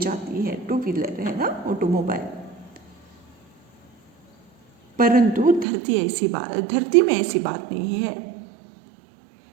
है। 2 व्हीलर है ना, ऑटोमोबाइल। परंतु धरती में ऐसी बात नहीं है।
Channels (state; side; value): drops out; left; at 5.7 s